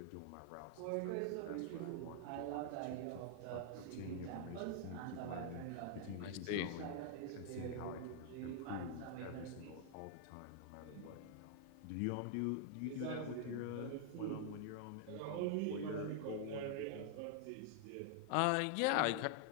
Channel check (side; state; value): both; different; correlation 0.00